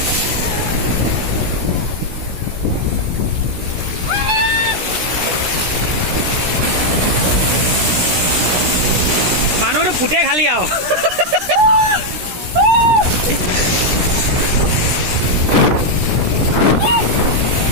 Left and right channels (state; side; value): late; left; 16 ms